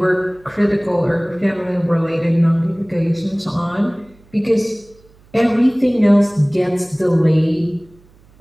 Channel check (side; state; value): right; noise; hum, 29 dB below the sound